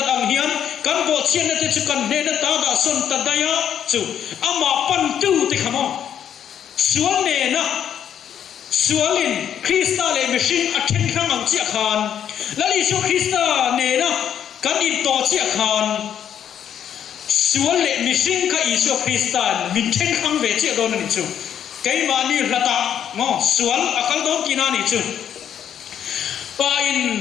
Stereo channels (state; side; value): quieter; right; 9.3 dB